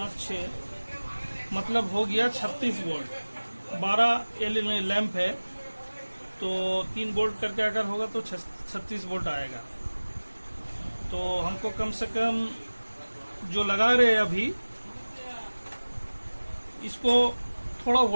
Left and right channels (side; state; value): both; inverted; correlation -1.00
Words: 6, मतलब हो गया 36 वोल्ट। 12 एलईडी लैंप है तो 3 वोल्ट करके अगर होगा तो 36 वोल्ट आएगा। तो हमको कम से कम जो लगा रहे हैं अभी, इसको थोड़ा